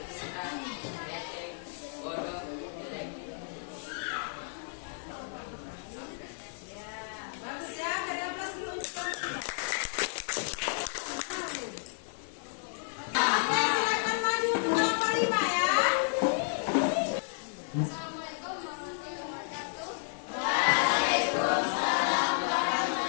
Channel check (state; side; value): silent; right; 56 dB below the other